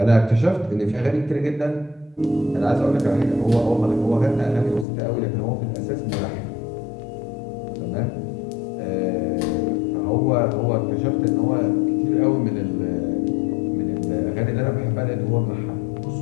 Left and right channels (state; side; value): drops out; right; at 4.9 s